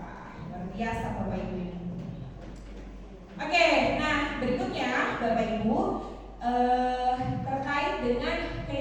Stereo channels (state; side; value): identical; both; correlation 1.00